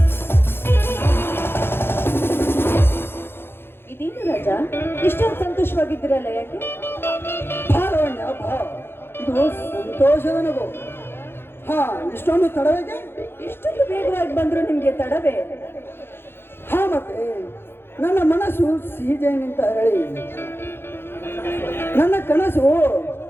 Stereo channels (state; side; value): late; right; 0.11 ms